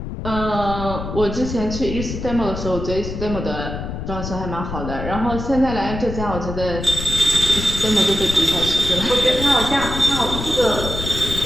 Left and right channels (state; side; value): noise; left; rumble, 6 dB below the sound